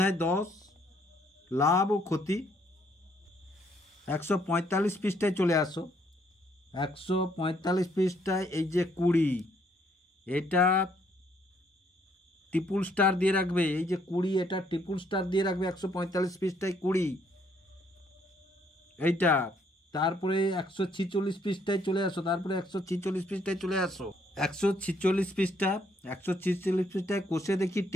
10 লাভ ও ক্ষতি। 145 পৃষ্ঠায় চলে আসো। 145 পৃষ্ঠায় এই যে 20, এটা ট্রিপল স্টার দিয়ে রাখবে। এই যে 20, এটা ট্রিপল স্টার দিয়ে রাখবে 145 পৃষ্ঠায় 20 এইটা। তারপরে 146 পৃষ্ঠায় চলে আসো। তারপরে 146 পৃষ্ঠায় চলে আসো। 146 পৃষ্ঠা, 146 পৃষ্ঠায় কোষে দেখি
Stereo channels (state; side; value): normal; both; correlation 0.68